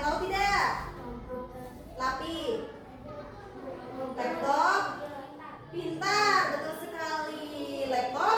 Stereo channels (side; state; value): both; identical; correlation 1.00